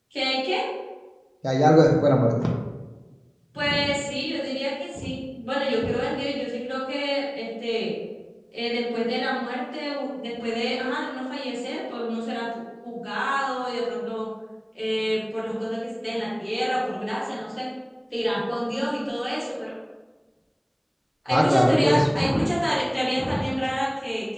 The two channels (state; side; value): identical; both; correlation 1.00